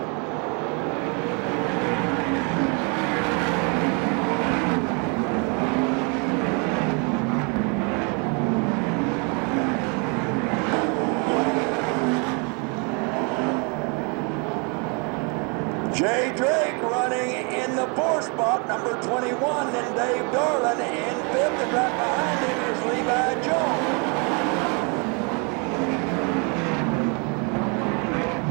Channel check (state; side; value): quieter; left; 34.0 dB